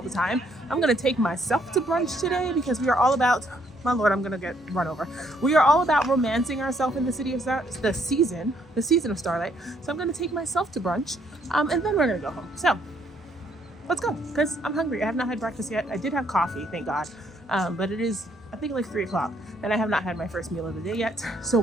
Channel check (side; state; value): both; normal; correlation 0.69